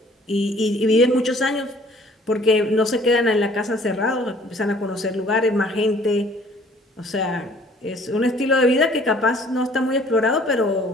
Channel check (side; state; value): both; normal; correlation 0.56